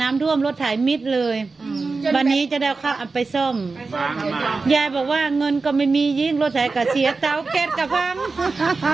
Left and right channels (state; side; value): quieter; left; 4.0 dB